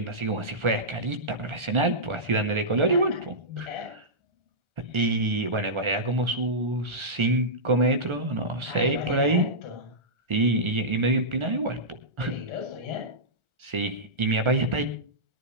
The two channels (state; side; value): late; left; 1.4 ms